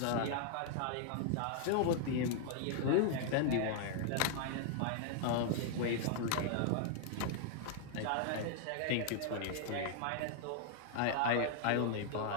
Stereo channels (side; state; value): both; different; correlation 0.00